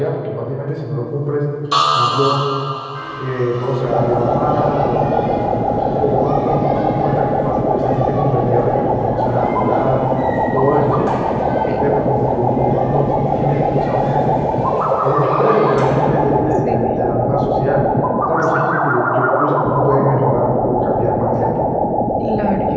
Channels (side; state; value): both; identical; correlation 1.00